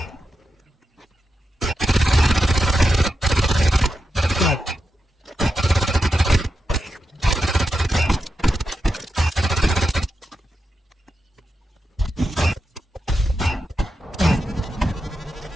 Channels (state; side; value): normal; both; correlation 0.88